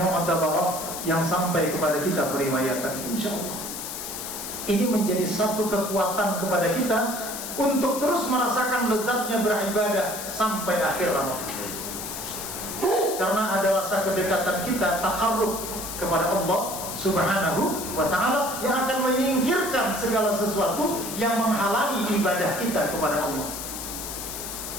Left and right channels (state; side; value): noise; left; hiss, 7 dB below the sound